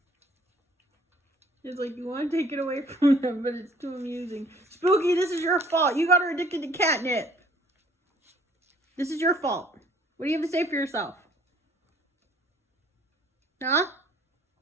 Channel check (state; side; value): normal; both; correlation 0.57